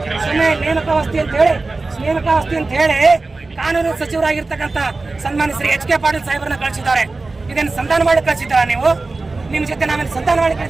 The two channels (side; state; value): left; quieter; 3.5 dB